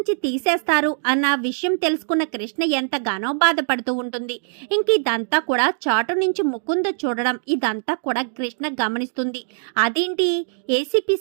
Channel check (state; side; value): silent; left; digital silence